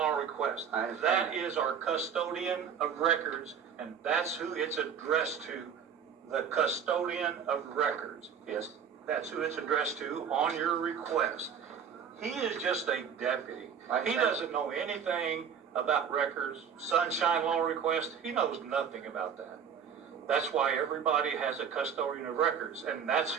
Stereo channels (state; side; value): quieter; left; 7.5 dB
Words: Request. I understand That that. is our custodian of records, and that's who it's addressed to, the custodian of records. Yes. That's who it's addressed to on your request. He is just a deputy. I He understand. doesn't know anything about records, Sunshine Law Request. He knows nothing about that. That's why everybody has a custodian of records, and that's